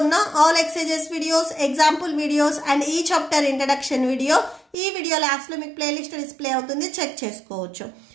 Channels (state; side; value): drops out; left; at 4.8 s